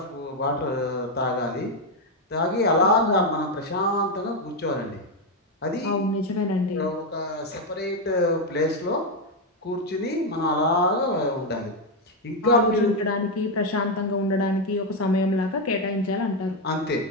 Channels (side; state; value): both; normal; correlation 0.05